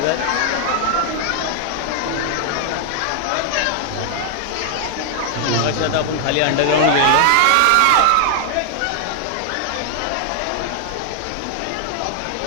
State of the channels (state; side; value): different; both; correlation 0.00